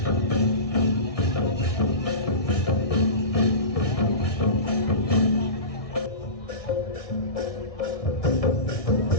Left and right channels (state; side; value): late; right; 1.7 ms